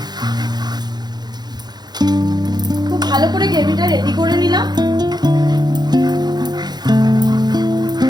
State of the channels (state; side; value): late; left; 0.20 ms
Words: খুব ভালো করে গ্রেভিটা রেডি করে নিলাম।